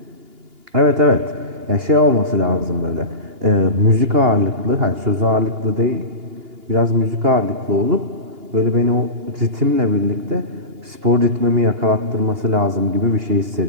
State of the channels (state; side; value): late; left; 2.8 ms